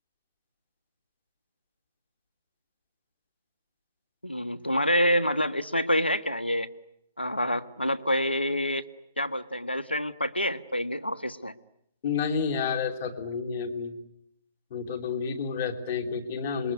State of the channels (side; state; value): both; inverted; correlation -0.65